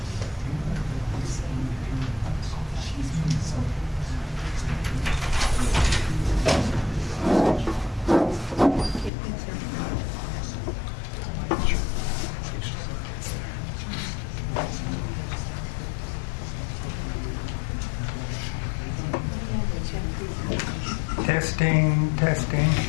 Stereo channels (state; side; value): drops out; right; at 9.1 s